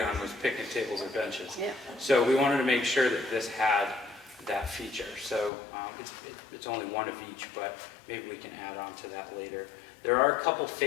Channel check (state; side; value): drops out; right; at 5.5 s